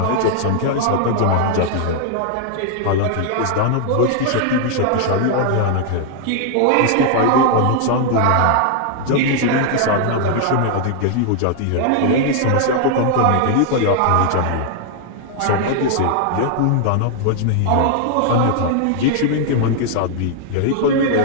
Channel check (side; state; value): both; different; correlation 0.00